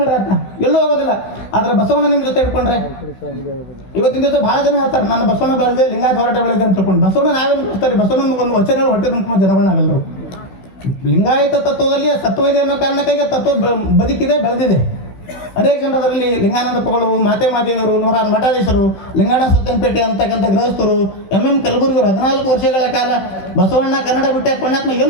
ಆತ, ಎಲ್ಲೂ ಹೋಗೋದಿಲ್ಲ. ಆದ್ರೆ ಬಸವಣ್ಣ ನಿಮ್ಮ ಜೊತೆ ಇಟ್ಕೊಂಡ್ರೆ ಇವತ್ತಿನ ದಿವಸ ಭಾಳ ಜನ ಹೇಳ್ತಾರೆ ನಾನು ಬಸವಣ್ಣ ಬೆಳೆದೆ, ಲಿಂಗಾಯತ ಹೋರಾಟ ಬೆಳೆದೆ ಅಂತ ತಿಳ್ಕೊಂಡು. ಬಸವಣ್ಣ ನಾವೇನು ಮಾಡ್ತಾರೆ? ಬಸವಣ್ಣ ಒಂದು ವಚನ ಹೊಟ್ಟೆ ತುಂಬ ಜನಗಳಾಗಲ್ಲರು. ಲಿಂಗಾಯತ ತತ್ವದಲ್ಲಿ ಸತ್ವ ಇದೆ ಅನ್ನೋ ಕಾರಣಕ್ಕಾಗಿ ತತ್ವ ಬದುಕಿದೆ, ಬೆಳೆದಿದೆ. ಅನೇಕ ಜನರು ಅದರಲ್ಲಿ ಲಿಂಗಾನಂದಪ್ಪಗಳು, ಮಾತೆ ಮಾದೇವರು, 106 ಮಠಾಧೀಶರು, ಲಿಂಗಾಣ ಸತ್ಯಂಪೇಟೆ ಅಂತಕ್ಕಂಥ ಗೃಹಸ್ಥರು, MM ಕಲಬುರ್ಗಿಯವರು 14 ವರ್ಷಗಳ ಕಾಲ ಬಸವಣ್ಣ ಕನ್ನಡ ಬಿಟ್ಟೆ ಪುಣ್ಯಾತ್ಮ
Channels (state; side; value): late; right; 16 ms